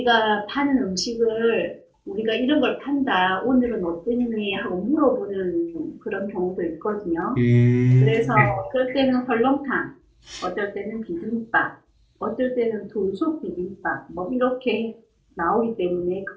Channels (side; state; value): both; identical; correlation 1.00